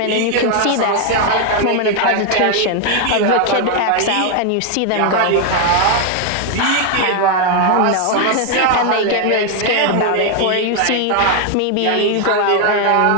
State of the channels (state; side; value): different; both; correlation 0.01